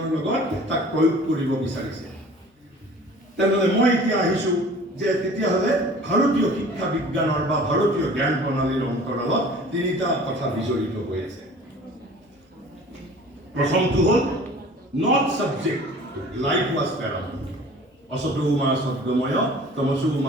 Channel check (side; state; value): both; normal; correlation 0.46